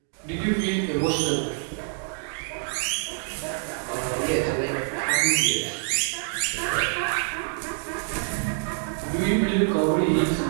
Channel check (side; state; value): left; silent; 60 dB below the other